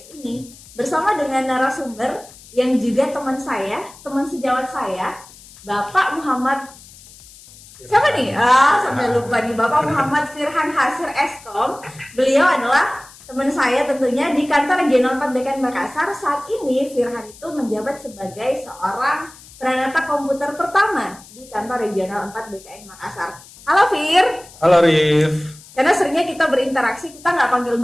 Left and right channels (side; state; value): left; noise; hiss, 21 dB below the sound